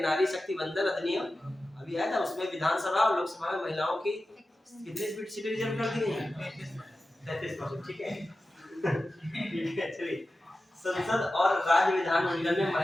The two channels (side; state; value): both; normal; correlation 0.94